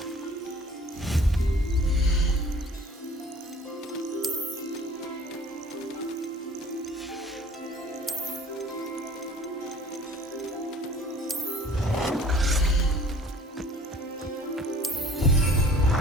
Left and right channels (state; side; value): normal; both; correlation 0.50